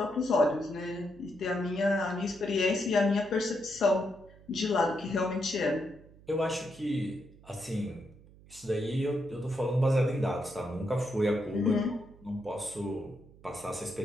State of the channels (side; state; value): right; noise; hum, 23 dB below the sound